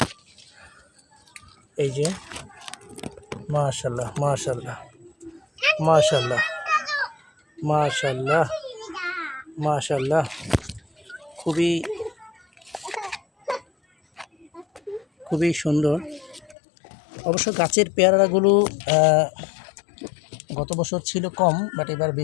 এই যে মাশাআল্লাহ মাশাআল্লাহ মাশাআল্লাহ মাশাআল্লাহ মাশাআল্লাহ, খুবই খুবই সুন্দর। অবশ্য গাছের পেয়ারাগুলো গত বছর ছিল কম, বাট এবার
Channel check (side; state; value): right; drops out; at 16.6 s